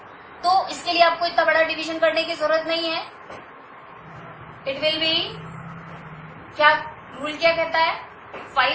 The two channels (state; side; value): identical; both; correlation 1.00